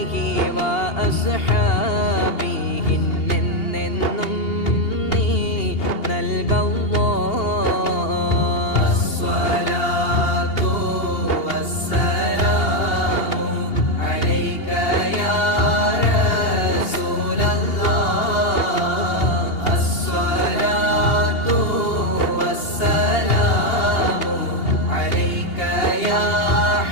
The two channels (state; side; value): late; right; 2.8 ms